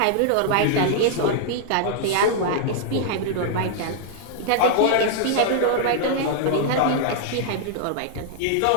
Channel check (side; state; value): both; different; correlation -0.01